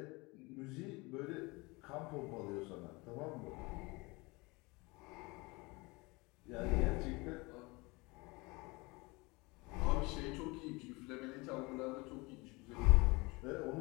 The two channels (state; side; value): quieter; right; 25.1 dB